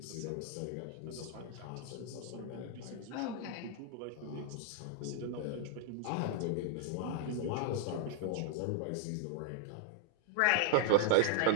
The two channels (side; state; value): both; different; correlation 0.00